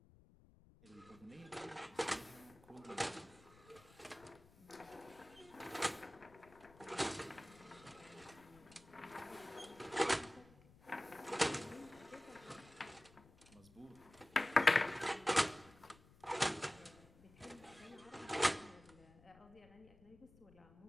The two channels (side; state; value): left; noise; rumble, 24 dB below the sound